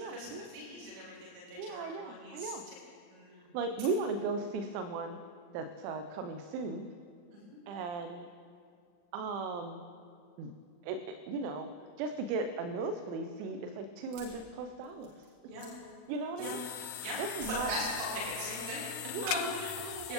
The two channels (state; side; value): late; left; 40 ms